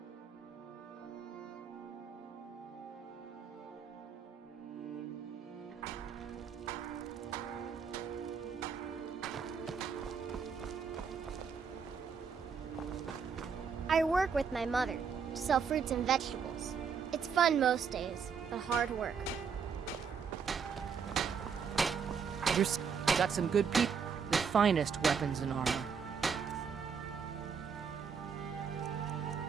I work with my mother to sell fruits and vegetables. It's fun most days, but hard work. You've got some good people. The finest weapons and armor.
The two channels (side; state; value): left; quieter; 6.3 dB